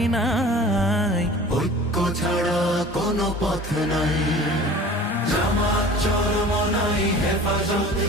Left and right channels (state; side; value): normal; both; correlation 0.42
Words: নাই, ঐক্য ছাড়া কোনো পথ নাই। জামাত চরমনাই হেফাজত